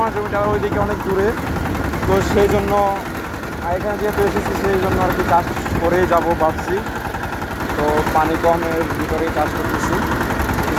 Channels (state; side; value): identical; both; correlation 1.00